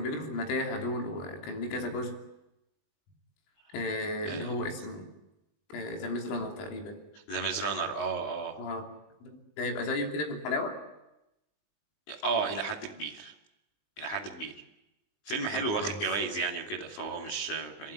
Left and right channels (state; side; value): late; right; 20 ms